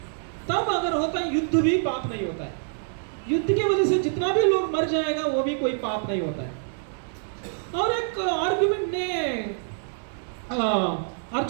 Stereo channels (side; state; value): left; silent; 61 dB below the other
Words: तब अगर होता है युद्ध भी पाप नहीं होता है। युद्ध की वजह से जितना भी लोग मर जाएगा वो भी कोई पाप नहीं होता है। और एक आर्गुमेंट ने